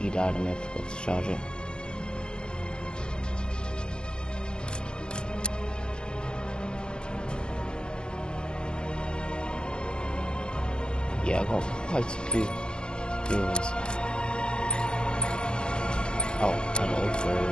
died and I forgot to charge it. Yeah, I got quite a few viewers. Oh, and also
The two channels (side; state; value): right; late; 0.048 ms